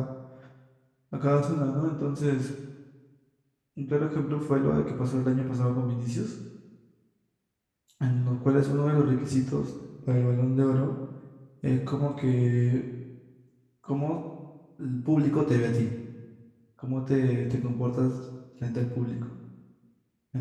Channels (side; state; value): both; identical; correlation 1.00